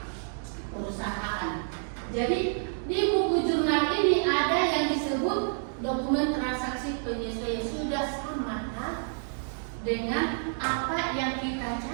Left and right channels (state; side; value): silent; left; digital silence